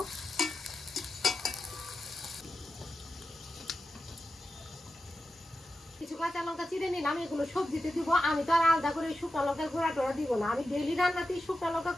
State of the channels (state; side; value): normal; both; correlation 0.90